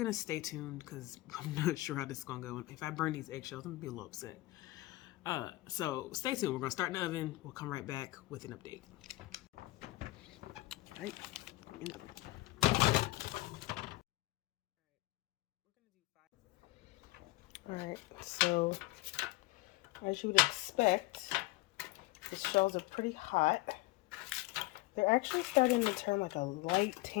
stay tuned because I'm not sure how this is gonna go. If I burn these eggshells, I'm gonna be a little upset. So stay tuned. We're gonna start in the oven. We'll come right back with an update. All right. All right. So as you would expect, the shells are pretty hot. They're actually starting to turn like a light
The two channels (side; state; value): right; quieter; 20.0 dB